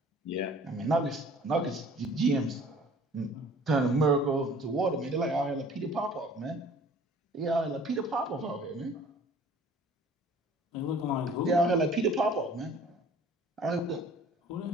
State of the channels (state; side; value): normal; both; correlation 0.51